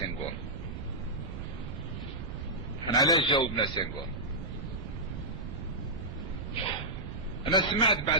احنا علاش جاوبنا سنغور؟ انا سمعت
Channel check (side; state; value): right; noise; rumble, 7 dB below the sound